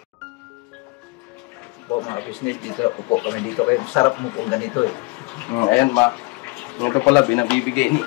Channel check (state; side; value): quieter; right; 27.3 dB